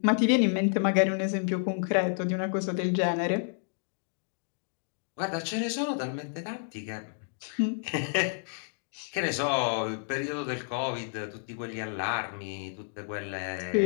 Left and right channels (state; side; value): silent; right; digital silence